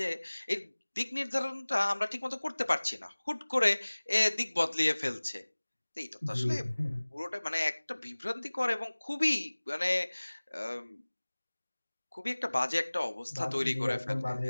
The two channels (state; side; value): inverted; both; correlation -1.00